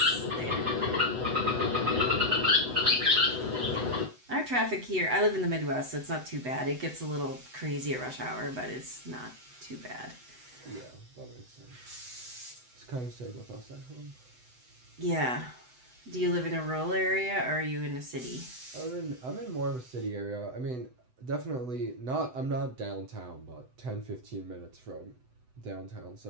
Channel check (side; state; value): left; late; 7.9 ms